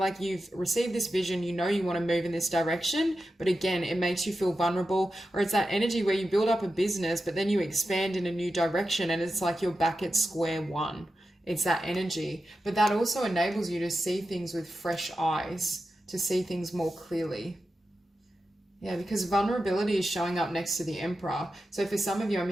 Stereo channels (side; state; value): both; normal; correlation 0.91